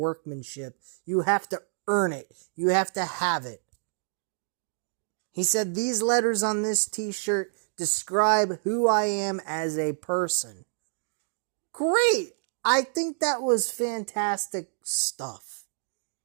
You have to earn it. You have to have it. He said, these letters on this t-shirt describe who I am as a person. Great! I think that was fantastic stuff.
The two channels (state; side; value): silent; left; digital silence